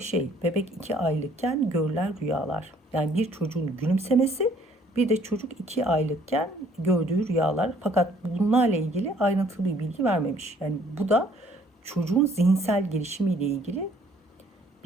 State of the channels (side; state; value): both; normal; correlation 0.60